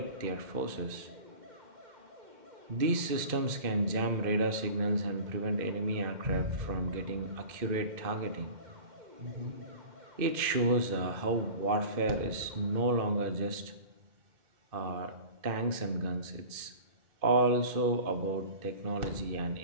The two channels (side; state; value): left; late; 2.5 ms